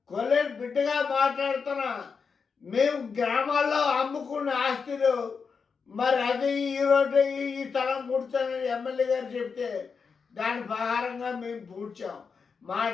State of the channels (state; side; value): quieter; right; 5.5 dB